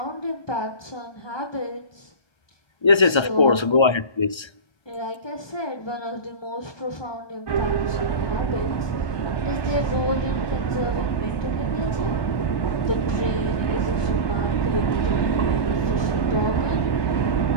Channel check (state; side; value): late; right; 1.3 ms